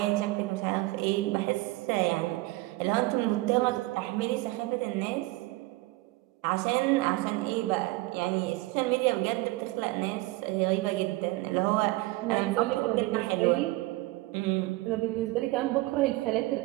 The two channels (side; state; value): left; quieter; 20.6 dB